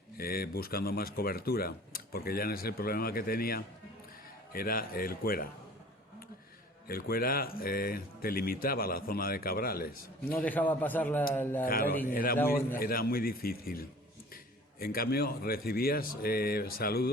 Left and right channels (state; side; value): normal; both; correlation 0.47